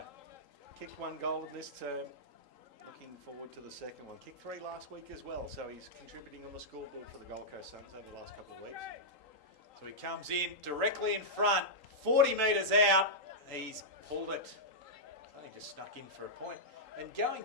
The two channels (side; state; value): left; late; 3.8 ms